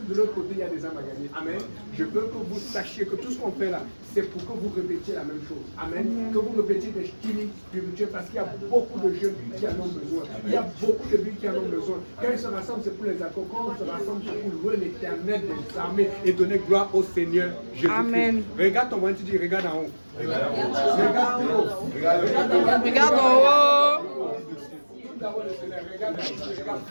de l'autre côté, il y a des âmes à gagner. Amen. Je veux que vous sachiez que tout ce qu'on fait là, c'est pour que vous répétiez la même chose. Amen. Que vous répétiez des styles spirituels parce qu'il y a beaucoup de jeunes qui en ont besoin. Il y a beaucoup de vies qui en ont besoin. Quand ils se rassemblent, c'est pour les accords. Quand on se rassemble, c'est pour louer l'Éternel des armées et donner gloire au Seigneur Jésus-Christ. Amen. Regarde ton voisin, tu dis regarde en haut. Regarde en haut. Regarde en haut.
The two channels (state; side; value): inverted; both; correlation -1.00